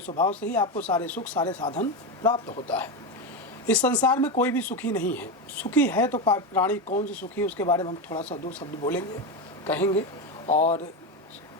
स्वभाव से ही आपको सारे सुख सारे साधन प्राप्त होता है। इस संसार में कोई भी सुखी नहीं है। सुखी है तो प्राणी कौन सी सुखी है, उसके बारे में हम थोड़ा सा 2 शब्द बोलेंगे, कहेंगे। और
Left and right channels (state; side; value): normal; both; correlation 0.14